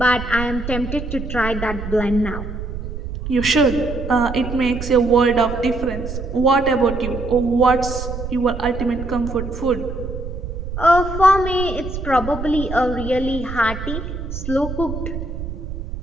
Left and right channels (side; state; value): right; noise; rumble, 7 dB below the sound